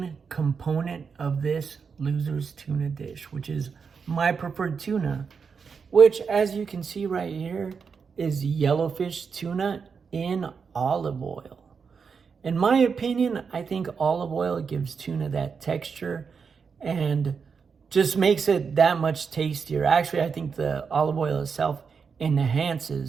component of this loser's tuna dish, which is my preferred tuna, which as you can see right here is yellowfish tuna in olive oil. In my opinion, I think olive oil gives tuna that texture and just makes it that much tastier. Actually, I think the olive oil itself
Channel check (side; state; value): left; quieter; 5.8 dB